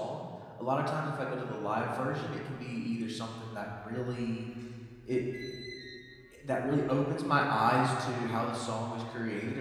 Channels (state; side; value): identical; both; correlation 1.00